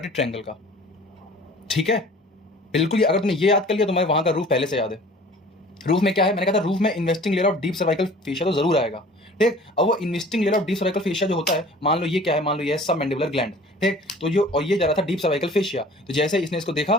ट्रायंगल का, ठीक है। बिल्कुल, अगर तुमने ये याद कर लिया तो मैं वहां का रूफ पहले से याद है। रूफ में क्या है? मैंने कहा था रूफ में investing layer of deep cervical fascia तो जरूर आएगा, ठीक। अब वो investing layer of deep cervical fascia जो होता है, मान लो ये क्या है? मान लो ये है सब मैंडिबुलर ग्लैंड, ठीक। तो जो और ये जा रहा था डीप सर्वाइकल फेशिया, तो जैसे इसने इसको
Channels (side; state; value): both; normal; correlation 0.47